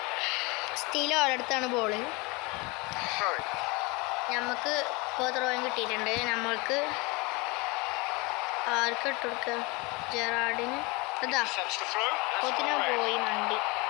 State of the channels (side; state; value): right; quieter; 26.6 dB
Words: സ്റ്റീൽ ഓരോടത്താണ് ball. Throwing. നമുക്ക് ഇപ്പോൾ ത്രോയും കിട്ടിയിട്ടുണ്ട്. നമ്മൾക്ക് ആർക്ക് ഇട്ട് കൊടുക്കുക? ജെറാഡിന്. അതാ Sets the throw. That's കൊത്തിന for red. പോയി മണ്ടി.